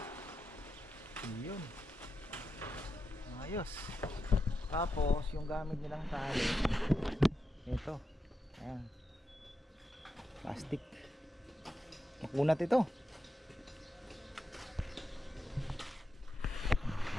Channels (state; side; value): normal; both; correlation 0.87